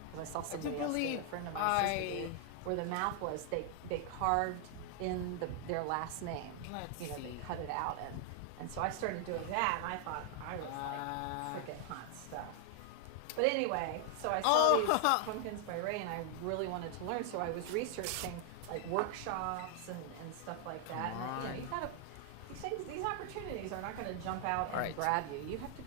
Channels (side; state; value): both; different; correlation 0.00